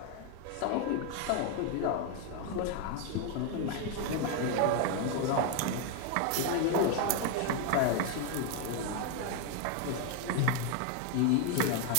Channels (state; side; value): different; both; correlation 0.01